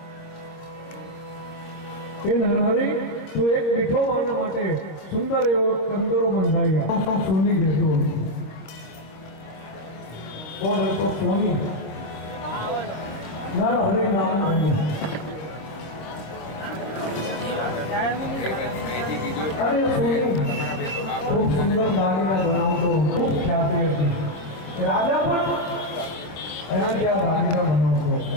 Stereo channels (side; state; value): right; late; 25 ms